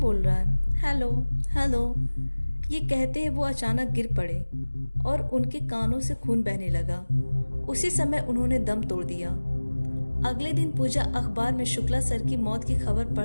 बोल रहा है? Hello hello. ये कहते हैं वो अचानक गिर पड़े और उनके कानों से खून बहने लगा। उसी समय उन्होंने दम तोड़ दिया। अगले दिन पूजा अखबार में शुक्ला सर की मौत की खबर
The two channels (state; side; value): inverted; both; correlation -1.00